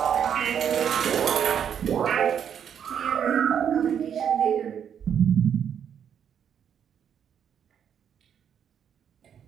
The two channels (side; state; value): left; quieter; 8.4 dB